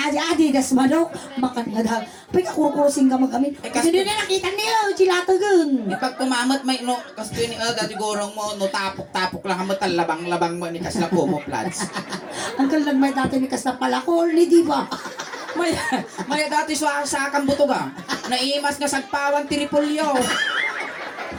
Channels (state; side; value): identical; both; correlation 1.00